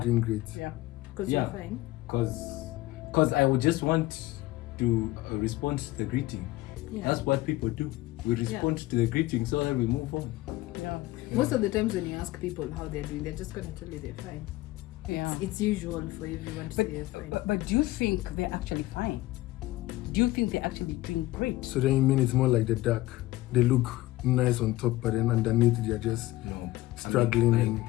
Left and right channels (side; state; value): right; quieter; 18.0 dB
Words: doing great. Yeah. Because Yeah. you're fine. Cause I would just want to respond to the greeting. Yeah. That's what people do. We respond to the greeting so that we move on. Yeah. Most of the times when you ask people how they're doing, they're just gonna tell you they're fine. Yeah. It's usual for everyone to say they're fine. But do you think they're actually fine? Do you think they're actually doing great? So then you mean it's more like the duck? They look nice on top, but then underneath they're just No. struggling I and mean,